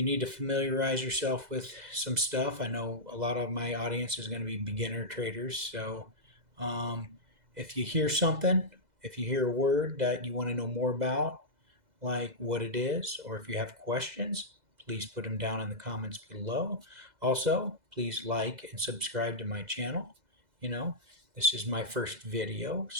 need to familiarize yourself with some stuff. I know a lot of my audience is going to be beginner traders. So um, if you hear something, if you hear a word that you want to know more about, like what it is, or if you have questions, please put them down in the comments below. Also, please like and subscribe to my channel. You know, this is my first video,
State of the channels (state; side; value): late; left; 2.0 ms